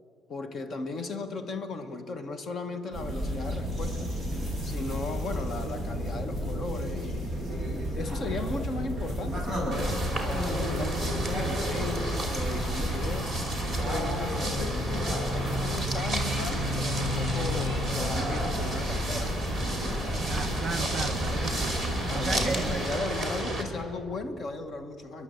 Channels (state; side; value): normal; both; correlation 0.69